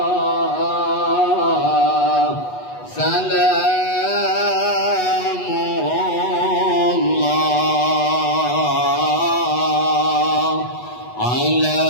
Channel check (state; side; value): late; right; 8.2 ms